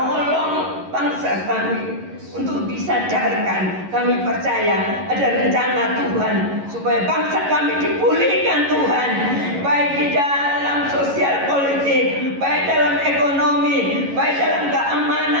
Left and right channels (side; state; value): left; late; 11 ms